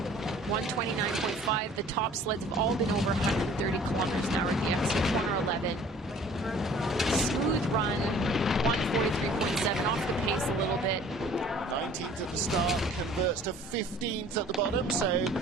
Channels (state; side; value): normal; both; correlation 0.51